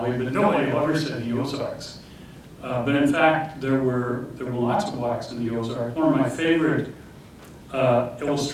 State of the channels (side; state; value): both; identical; correlation 1.00